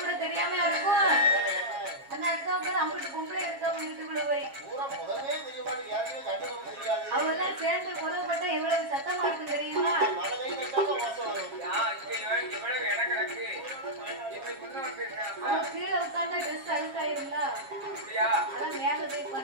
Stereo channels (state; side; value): late; left; 7.3 ms